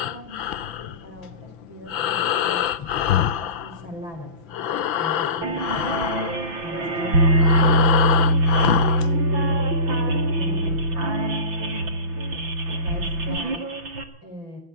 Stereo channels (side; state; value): left; late; 5.9 ms